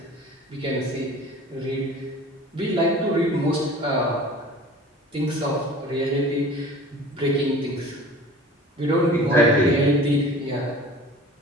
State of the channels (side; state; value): both; normal; correlation 0.43